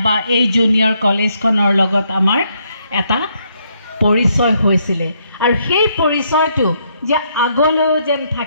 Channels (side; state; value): both; inverted; correlation -0.73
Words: বা এই জুনিয়ৰ কলেজখনৰ লগত আমাৰ এটা পৰিচয় হৈছিলে। আৰু সেই পৰিচয়টো যে আগলৈও যেন